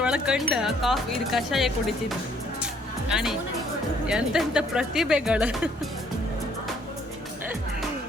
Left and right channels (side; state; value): both; normal; correlation 0.63